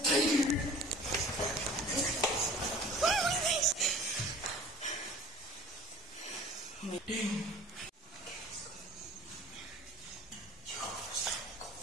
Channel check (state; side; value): normal; both; correlation 0.45